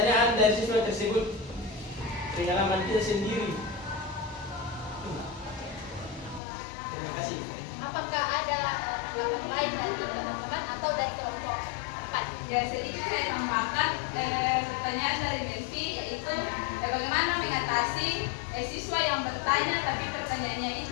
dari siswa tersebut, pengalaman kita sendiri. Terima kasih. Apakah ada tanggapan lain dari teman-teman atau dari kelompok 4? Ya, sedikit saya tambahkan pertanyaan dari Delvi, yaitu bagaimana mengatasi siswa yang bertanya tapi pertanyaannya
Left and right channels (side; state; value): right; drops out; at 6.4 s